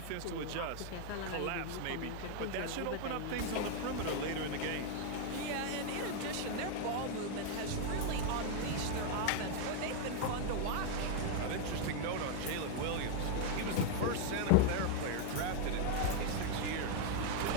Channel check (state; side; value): different; both; correlation 0.00